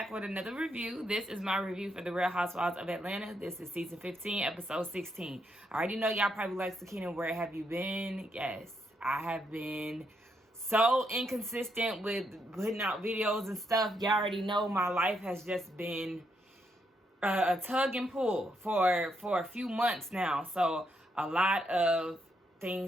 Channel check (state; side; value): normal; both; correlation 0.78